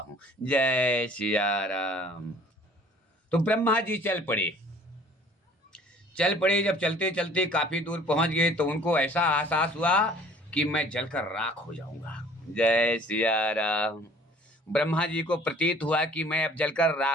जय सिया राम। तो ब्रह्मा जी चल पड़े। जब चलते चलते काफी दूर पहुंच गए तो उनको ऐसा एहसास हुआ कि मैं जलकर राख हो जाऊंगा। जय सिया राम। ब्रह्मा जी को प्रतीत हुआ कि मैं अब जलकर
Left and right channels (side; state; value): both; normal; correlation 0.52